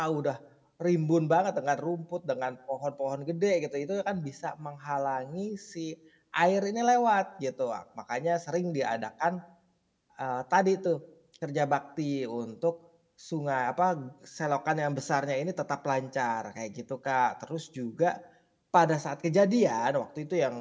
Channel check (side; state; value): both; identical; correlation 1.00